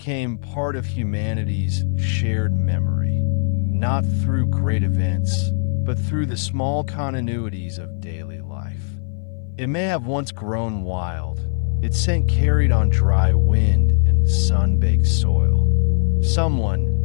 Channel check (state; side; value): silent; right; 59 dB below the other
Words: part of humanity's shared memory, not through great events, but through the small continuities of daily life. It may have once grown wild, its scent carried on dry wind and sun-baked soil.